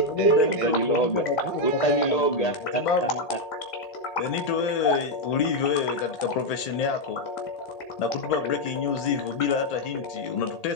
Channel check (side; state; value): right; late; 1.8 ms